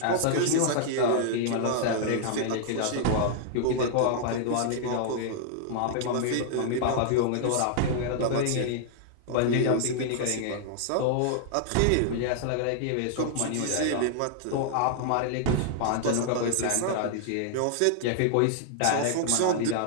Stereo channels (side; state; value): both; different; correlation -0.01